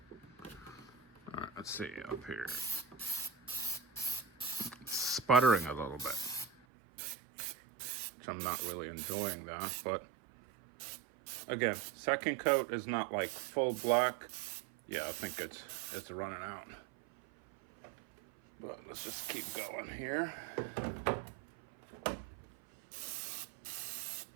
All right, let's see up here. It's sputtering a little bit. which I'm not really enjoying that. But again, second coat is not like full black. Yeah, I think it's running out. But let's just keep going here.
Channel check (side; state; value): left; drops out; at 6.5 s